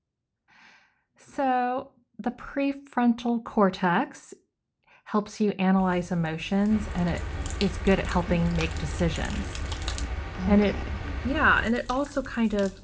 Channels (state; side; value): identical; both; correlation 1.00